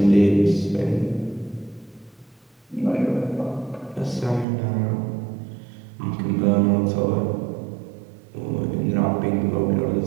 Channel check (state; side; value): drops out; left; at 4.5 s